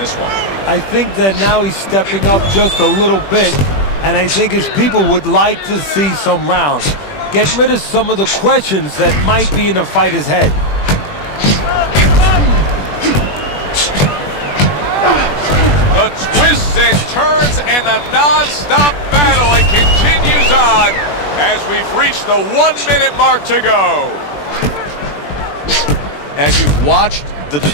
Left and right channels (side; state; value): right; late; 21 ms